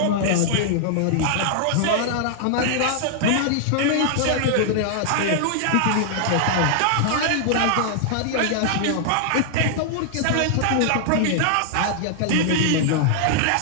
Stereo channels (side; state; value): both; different; correlation -0.01